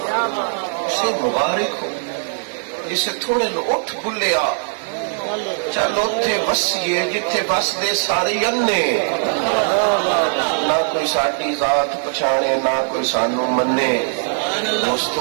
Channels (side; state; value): left; silent; digital silence